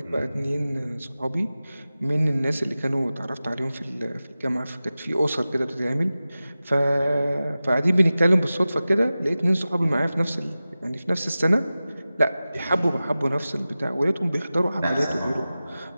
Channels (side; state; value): both; inverted; correlation -0.96